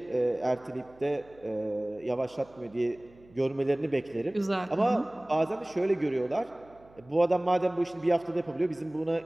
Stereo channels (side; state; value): right; noise; hum, 26 dB below the sound